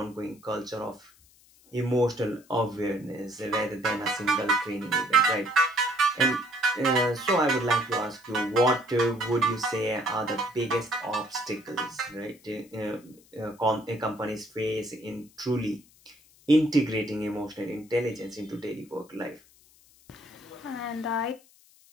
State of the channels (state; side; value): noise; left; hiss, 28 dB below the sound